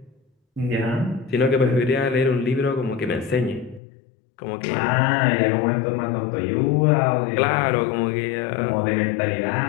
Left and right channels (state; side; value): drops out; right; at 3.8 s